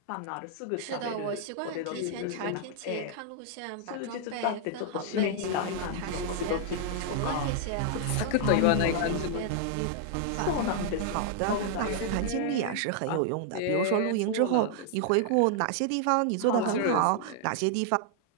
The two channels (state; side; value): different; both; correlation 0.00